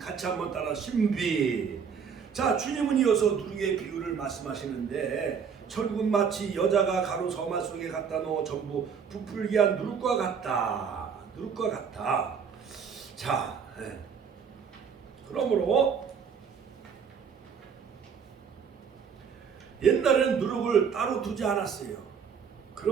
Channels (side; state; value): left; quieter; 6.7 dB